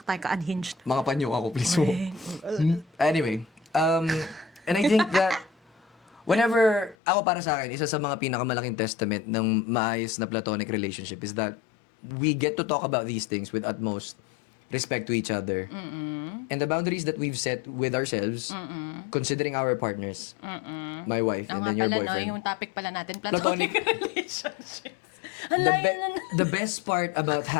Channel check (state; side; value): drops out; right; at 7.0 s